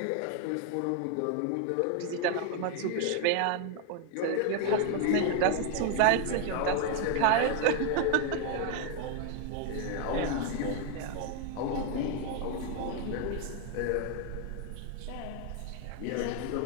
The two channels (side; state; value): both; different; correlation 0.00